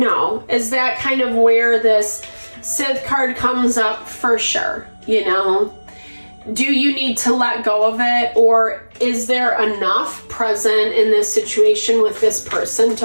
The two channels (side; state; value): both; inverted; correlation -1.00